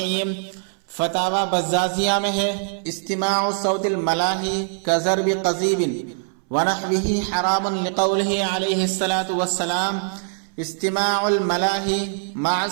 فتاوی بزازیہ میں ہے، استماع صوت الملاہی کضرب قضیب ونحوہ حرام لقولہ علیہ الصلاۃ والسلام استماع الملاہی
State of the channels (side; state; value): left; silent; 64 dB below the other